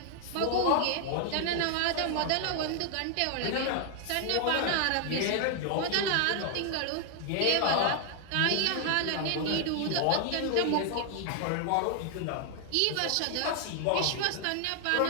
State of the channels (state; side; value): different; both; correlation 0.00